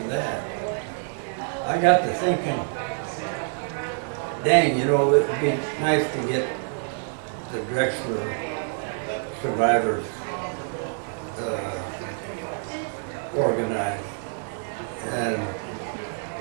that, I got to thinking, dang, you know, it would be nice to get the Drexler survivors organized. And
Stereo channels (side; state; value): left; silent; 61 dB below the other